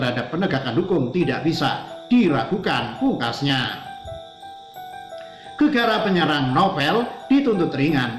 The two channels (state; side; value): identical; both; correlation 1.00